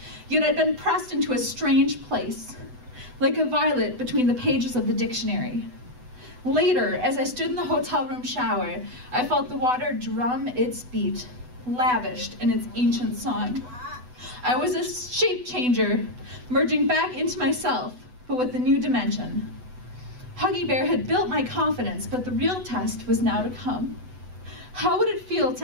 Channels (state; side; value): late; left; 8.1 ms